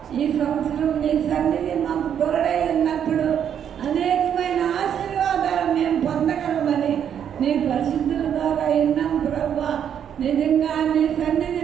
ఈ సంవత్సరం నీ సన్నిధి మాకు తోడై ఉన్నప్పుడు అనేకమైన ఆశీర్వాదాలు మేము పొందగలమని నీ పరిశుద్ధుల ద్వారా విన్నాం ప్రభా. నిజంగా నీ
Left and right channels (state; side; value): quieter; left; 8.8 dB